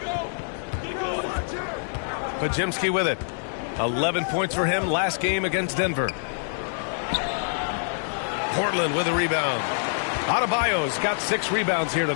Podziemski with it. 11 points for him last game against Denver. Portland with a rebound. Adebayo's got 6 rebounds here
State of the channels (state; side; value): silent; right; digital silence